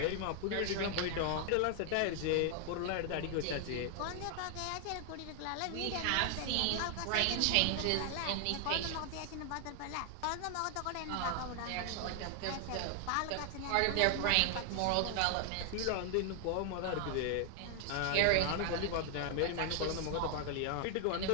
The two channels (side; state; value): both; different; correlation 0.00